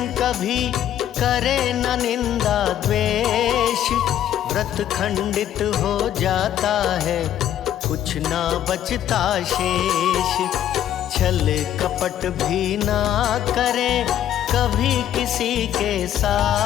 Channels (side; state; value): right; quieter; 11.1 dB